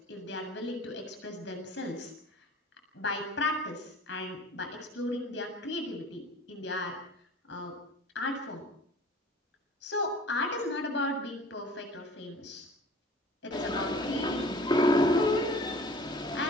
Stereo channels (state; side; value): normal; both; correlation 0.46